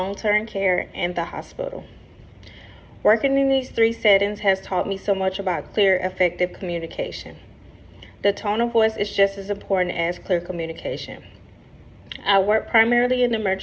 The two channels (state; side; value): identical; both; correlation 1.00